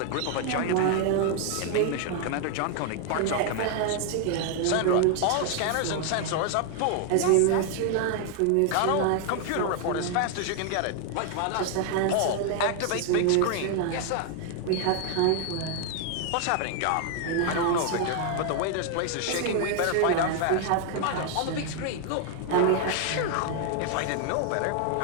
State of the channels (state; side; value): different; both; correlation 0.00